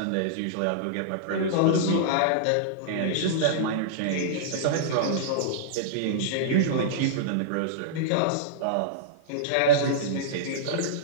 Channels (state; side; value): different; both; correlation -0.02